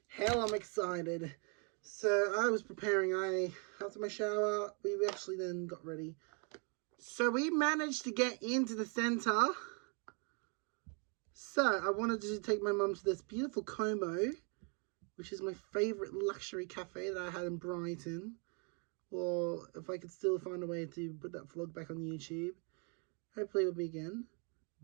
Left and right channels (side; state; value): left; quieter; 37.4 dB